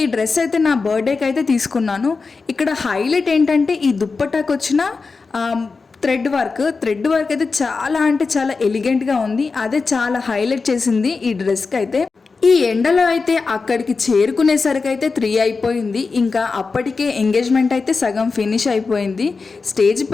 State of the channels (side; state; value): right; quieter; 4.4 dB